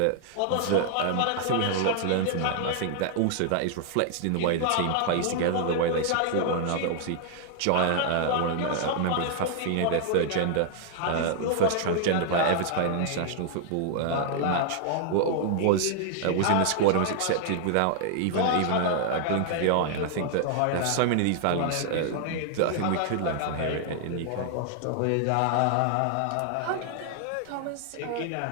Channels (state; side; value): different; both; correlation 0.00